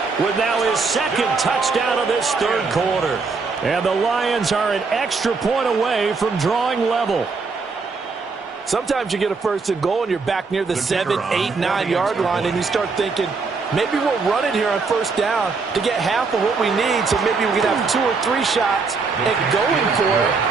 with now his second touchdown of this third quarter. And the Lions are an extra point away from drawing level. Sometimes you get a first and goal and you're back near the 7, 8, 9 yard line and you start thinking, maybe we'll run it here on first down to get half of what we need, so maybe we can have 2 or 3 shots at going for it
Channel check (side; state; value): left; quieter; 4.5 dB